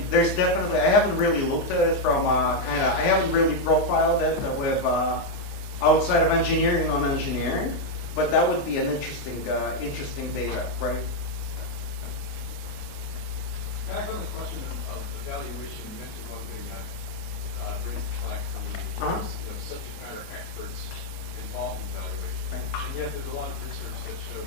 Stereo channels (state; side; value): late; right; 29 ms